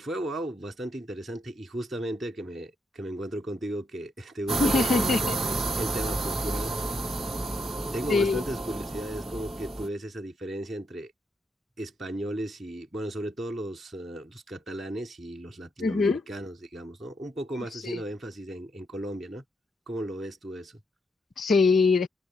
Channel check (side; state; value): both; normal; correlation 0.78